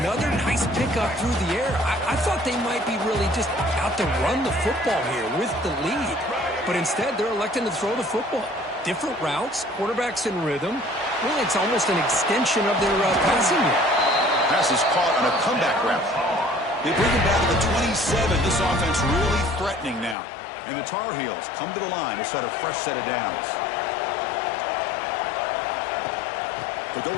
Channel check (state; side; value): drops out; right; at 20.2 s